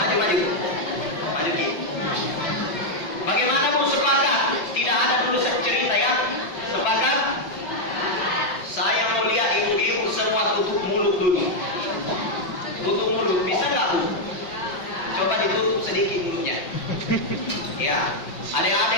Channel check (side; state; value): right; late; 6.0 ms